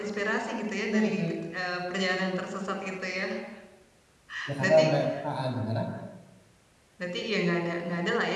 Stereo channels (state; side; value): identical; both; correlation 1.00